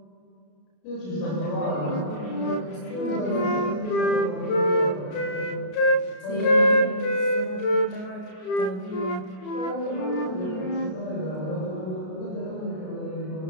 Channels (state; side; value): late; right; 33 ms